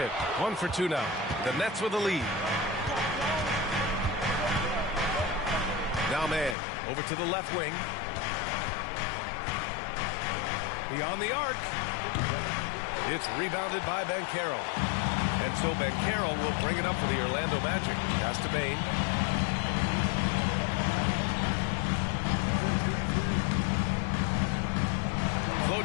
1 for 2 now. The Nets with the lead. Now man, over to the left wing. Beyond the arc. It's rebounded by Banchero. And so Banchero will bring it up for the Orlando Magic. Pass to Bane.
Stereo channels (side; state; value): right; drops out; at 6.6 s